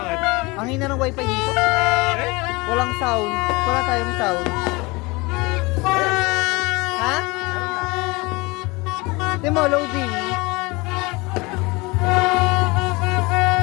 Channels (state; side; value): quieter; right; 24.8 dB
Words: Ang hina ng wifi dito. Eh? Walang sound. Wala tayong sound. Ha? Di mo, loading.